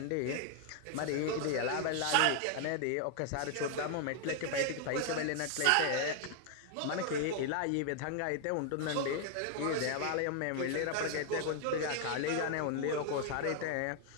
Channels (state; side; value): different; both; correlation 0.00